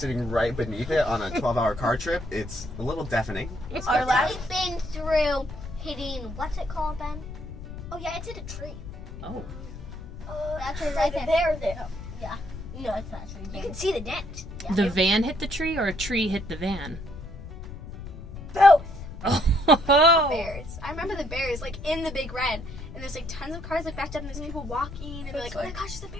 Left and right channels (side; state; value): left; noise; rumble, 11 dB below the sound